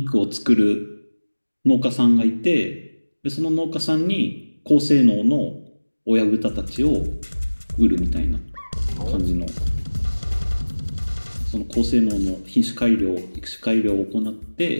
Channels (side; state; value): both; inverted; correlation -1.00